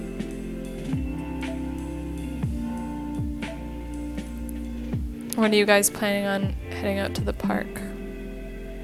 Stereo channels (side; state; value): both; identical; correlation 1.00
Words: When are you guys planning on heading out to the park?